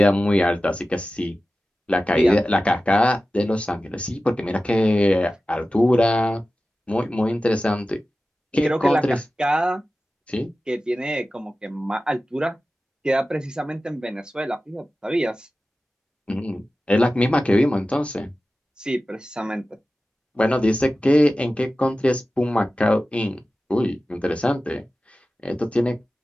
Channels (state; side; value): normal; both; correlation 0.95